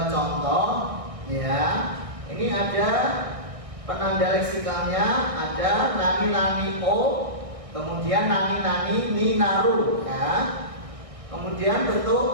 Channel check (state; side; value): late; left; 1.6 ms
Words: contoh ya. Ini ada penanda leksikalnya, ada nani-nani o, kemudian nani-nani ni naru ya. Kemudian